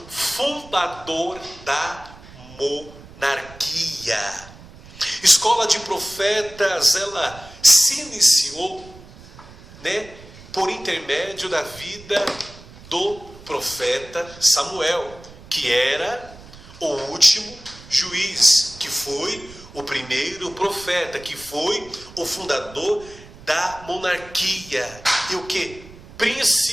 fundador da monarquia. Escola de profetas, ela se iniciou, por intermédio da vida do profeta Samuel, que era o último juiz, que foi o primeiro profeta, que foi o fundador da monarquia, e o que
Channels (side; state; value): right; noise; rumble, 19 dB below the sound